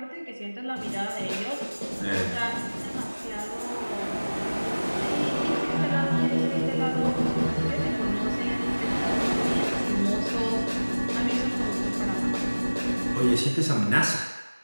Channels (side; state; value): both; inverted; correlation -1.00